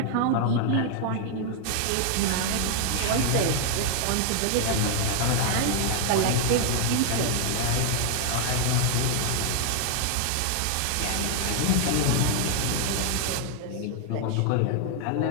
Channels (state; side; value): different; both; correlation 0.00